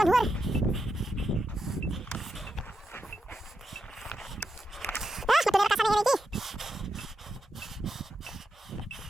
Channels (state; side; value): normal; both; correlation 0.86